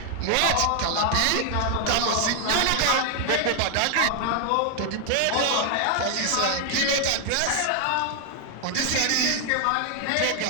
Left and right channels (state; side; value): different; both; correlation 0.00